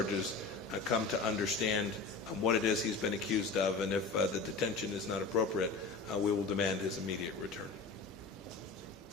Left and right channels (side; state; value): right; quieter; 4.1 dB